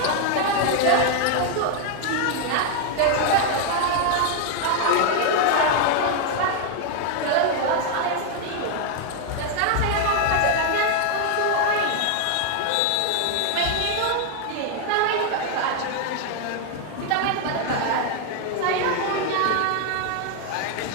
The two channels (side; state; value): both; different; correlation 0.00